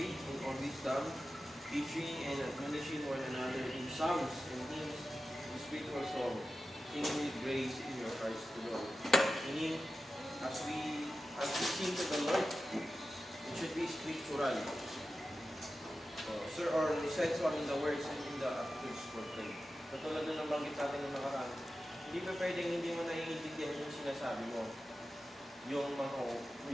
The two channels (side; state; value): both; normal; correlation 0.93